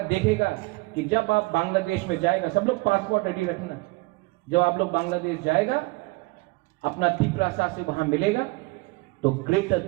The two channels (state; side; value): quieter; left; 24.3 dB